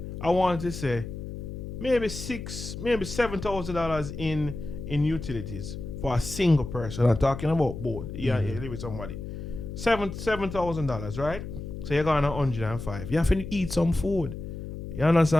I want to say, maybe $7,000 in utilities for a single person. I'm talking about both. Yeah, you live with somebody. $7,000, right? So you're going to 105. You have to eat some food. You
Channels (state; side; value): noise; left; hum, 8 dB below the sound